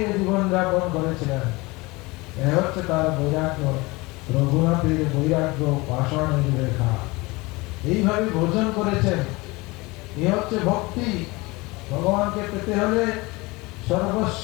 জীবনযাপন করেছিলেন। এ হচ্ছে তার বৈরাগ্য, রঘুনাথের বৈরাগ্য, পাষাণের রেখা। এইভাবে ভোজন করেছেন। এ হচ্ছে ভক্তি। ভগবানকে পেতে হলে সর্বস্ব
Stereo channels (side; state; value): right; quieter; 23.5 dB